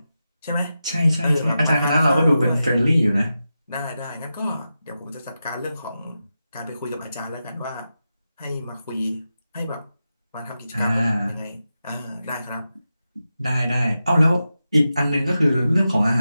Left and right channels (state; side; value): inverted; both; correlation -0.90